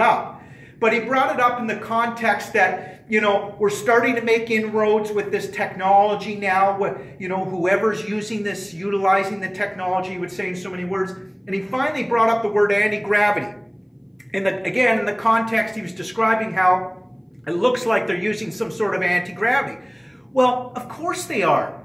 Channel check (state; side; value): identical; both; correlation 1.00